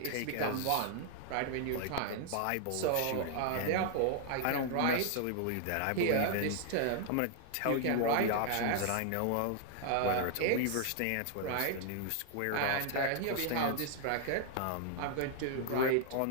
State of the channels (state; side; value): different; both; correlation 0.00